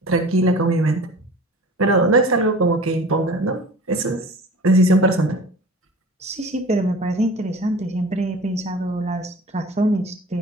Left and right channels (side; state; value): both; normal; correlation 0.41